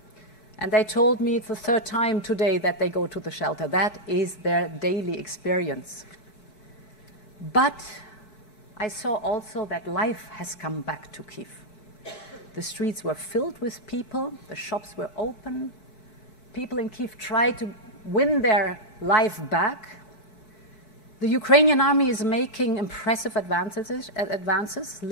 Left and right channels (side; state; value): right; late; 5.1 ms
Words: And they told me it's the third time today that they go to the shelter. That is their daily experience. But I saw also that life has come back to Kyiv. The streets were filled with people, the shops were open. People in Kyiv tried to win their life back. The Ukrainian army is making impressive advances,